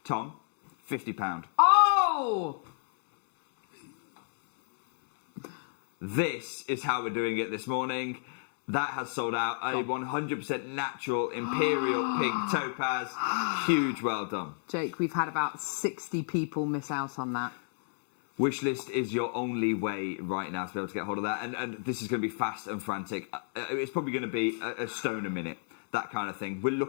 Tom, £50. Oh! This is how we're doing it this morning. That has sold out. A 100% natural imperial pink topaz. Huge, well done. Jake, we've had about 60 people miss out on that. Wishlist is your only way right now to be able to get hold of that. And this is going to be fast and frantic. It's probably going to be a stone a minute. That kind of thing. We're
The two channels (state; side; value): silent; right; digital silence